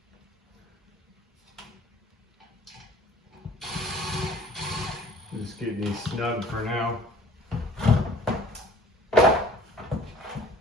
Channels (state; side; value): normal; both; correlation 0.50